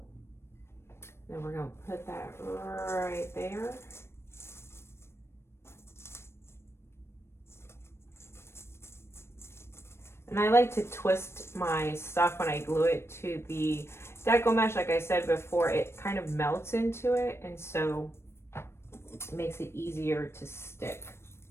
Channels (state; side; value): late; right; 0.12 ms